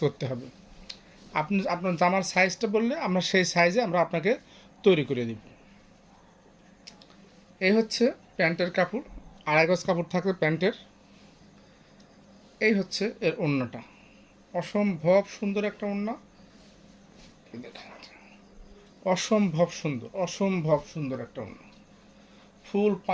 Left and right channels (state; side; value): identical; both; correlation 1.00